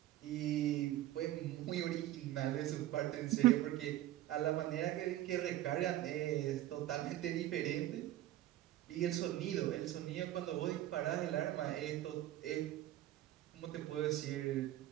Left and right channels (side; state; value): left; quieter; 14.2 dB